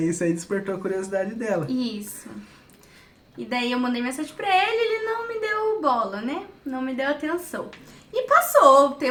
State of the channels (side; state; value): both; identical; correlation 1.00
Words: isso aí despertou a curiosidade dela. Isso. E daí eu mandei mensagem pra ele não me deu bola, né? Não me deu atenção. E passou, o